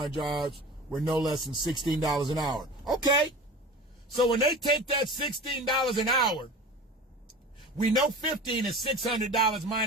jobs were no less than $16 an hour. Okay. So when they take that $16 an hour, we know 15 is $600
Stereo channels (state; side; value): normal; both; correlation 0.36